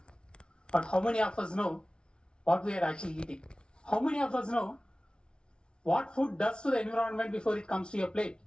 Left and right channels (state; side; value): late; right; 0.056 ms